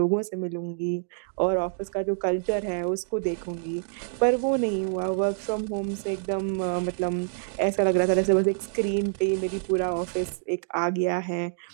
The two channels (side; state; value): left; silent; digital silence